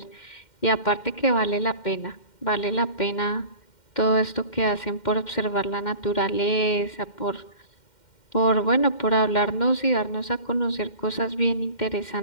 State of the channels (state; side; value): late; right; 2.1 ms